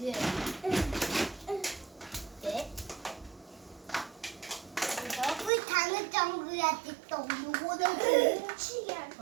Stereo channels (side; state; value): left; drops out; at 5.5 s